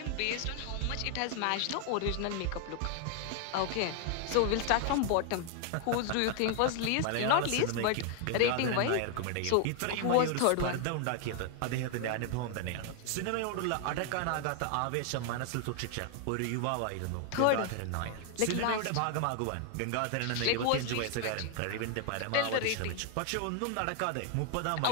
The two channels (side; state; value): both; different; correlation 0.00